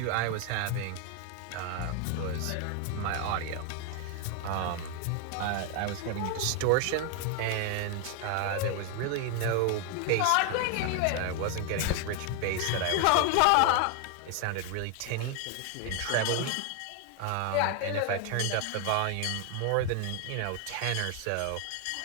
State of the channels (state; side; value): different; both; correlation 0.01